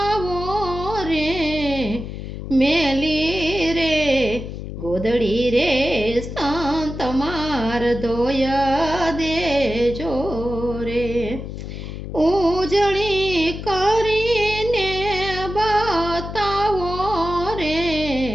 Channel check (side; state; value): left; noise; hum, 8 dB below the sound